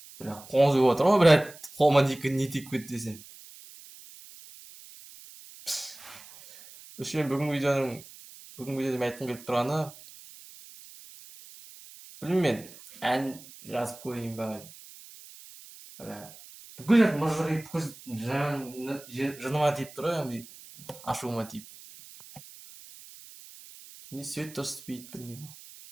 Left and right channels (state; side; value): noise; right; hiss, 19 dB below the sound